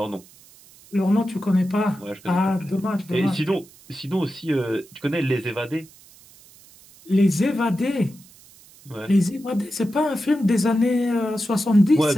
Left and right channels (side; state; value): right; noise; hiss, 24 dB below the sound